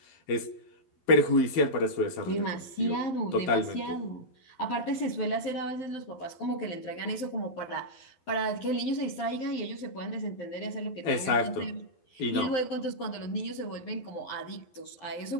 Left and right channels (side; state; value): right; late; 11 ms